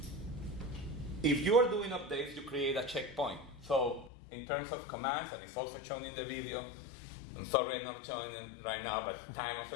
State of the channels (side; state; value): right; drops out; at 4.1 s